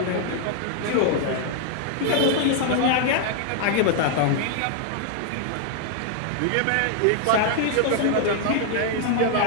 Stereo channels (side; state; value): both; different; correlation 0.00